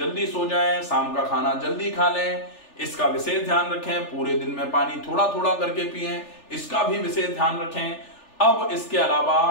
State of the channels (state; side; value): late; right; 3.4 ms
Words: सो जाएं, शाम का खाना जल्दी खा लें, इसका विशेष ध्यान रखें। पूरे दिन में पानी थोड़ा थोड़ा करके पिएं, इसका भी विशेष ध्यान रखें। अब इसके अलावा